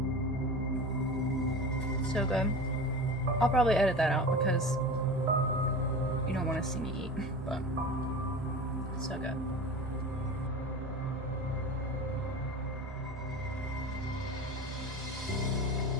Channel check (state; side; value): normal; both; correlation 0.32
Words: So good. I'll probably edit that out because you don't want to see me eat, but so good.